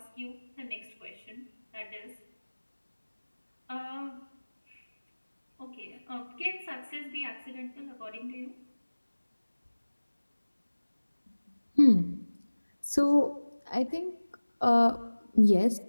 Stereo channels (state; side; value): inverted; both; correlation -1.00